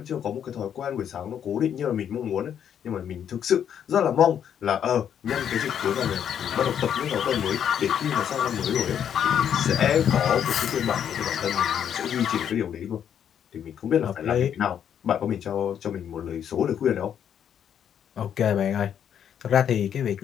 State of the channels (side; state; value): right; quieter; 9.0 dB